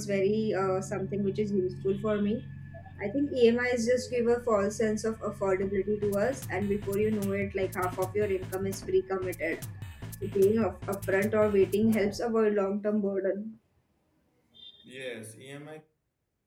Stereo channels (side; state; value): both; identical; correlation 1.00